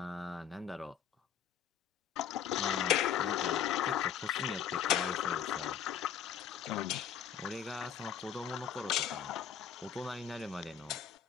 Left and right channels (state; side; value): quieter; right; 8.8 dB